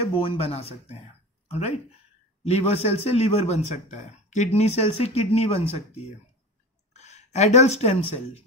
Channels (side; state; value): both; normal; correlation 0.32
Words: बोन बना सकते हैं, ऑलराइट। लीवर सेल से लीवर बन सकता है, किडनी सेल से किडनी बन सकती है। एडल्ट स्टेम सेल,